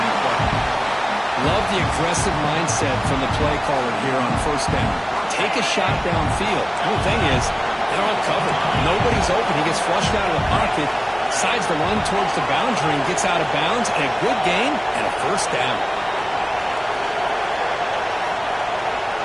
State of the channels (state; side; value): identical; both; correlation 1.00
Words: play. Love the aggressive mindset from the play caller here on first down. Take a shot downfield. The only thing is, they're all covered. Nobody's open. He gets flushed out of the pocket, decides to run towards the boundary and gets out of bounds, and a good gain and a first down.